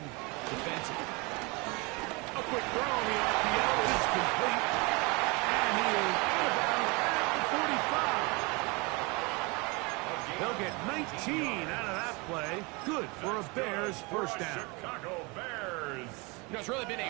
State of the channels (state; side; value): quieter; left; 27.8 dB